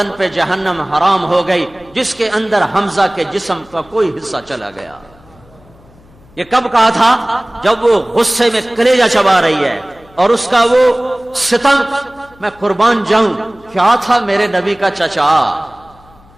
پہ جہنم حرام ہو گئی جس کے اندر حمزہ کے جسم کا کوئی حصہ چلا گیا۔ یہ کب کہا تھا؟ جب وہ غصے میں کلیجہ چبا رہی ہے، اور اس کا وہ ستم، میں قربان جاؤں، کیا تھا میرے نبی کا چچا،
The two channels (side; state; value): left; noise; hum, 27 dB below the sound